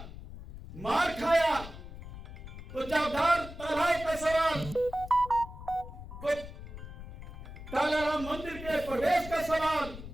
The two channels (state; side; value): noise; left; rumble, 12 dB below the sound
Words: मार खाया, तो चौधार तालाब का सवाल, तो कालाराम मंदिर के प्रवेश का सवाल,